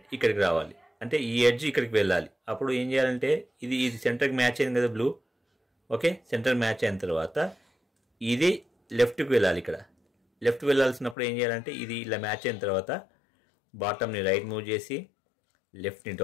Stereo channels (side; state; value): right; drops out; at 11.2 s